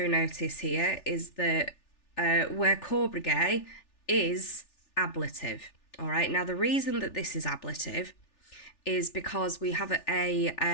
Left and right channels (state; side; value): late; right; 3.4 ms